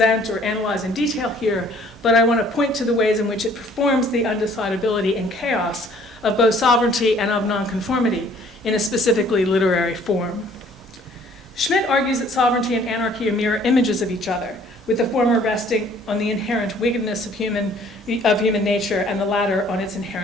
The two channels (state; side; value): normal; both; correlation 0.57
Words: or analyze in detail here, but I want to point to the ways in which it performs the undecidability and chaos of both sovereignty and of nonconformity in a specifically literary form. Schmidt argues that sovereignty and anarchy are mirror images of each other, with the former resting on the inherent wickedness of human nature and the latter on its